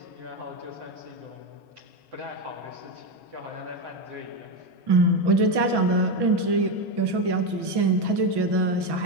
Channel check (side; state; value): left; late; 1.1 ms